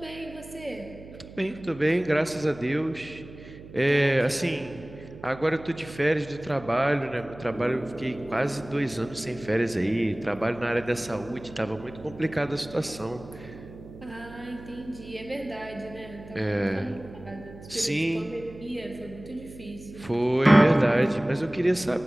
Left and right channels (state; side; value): noise; right; hum, 17 dB below the sound